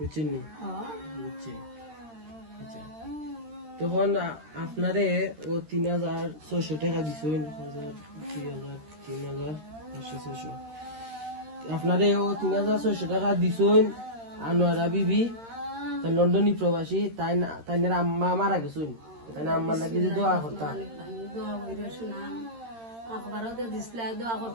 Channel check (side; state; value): left; late; 13 ms